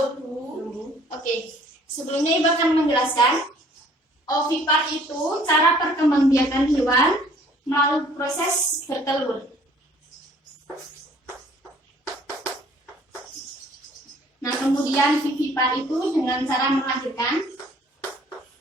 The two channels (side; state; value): both; normal; correlation 0.57